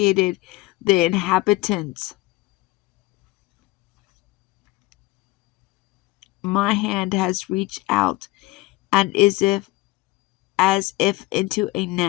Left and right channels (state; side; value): quieter; right; 20.2 dB